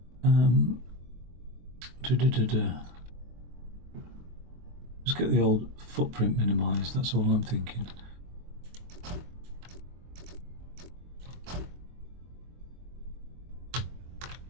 Just get the old footprint minimised, that's all I'm thinking.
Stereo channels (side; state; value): left; late; 24 ms